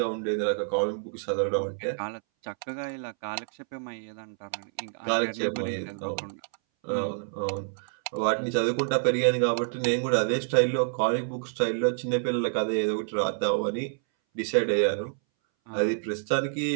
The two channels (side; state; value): left; silent; 59 dB below the other